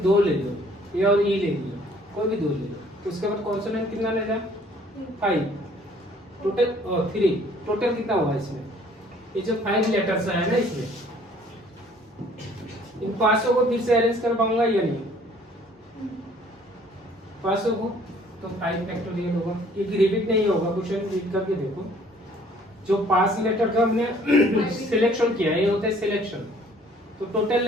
ले लो, ए और ई ले लिया, कोई भी 2 ले लो। उसके बाद कॉन्सोनेंट कितना लेगा? 5, टोटल 3, टोटल कितना हुआ इसमें? ये जो 5 लेटर्स है ना इसमें, इन 500 को फिर से अरेंज कर पाऊंगा या नहीं? 500 को तो 5 फैक्टोरियल होगा, ये रिपीट नहीं होगा, क्वेश्चन रीड करके देखो। जो 5 लेटर का हमने सिलेक्शन किया, ये होता है सिलेक्शन, तो टोटल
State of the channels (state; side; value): normal; both; correlation 0.57